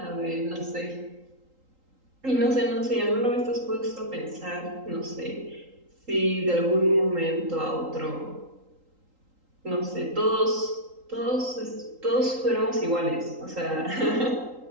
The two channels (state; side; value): late; left; 3.8 ms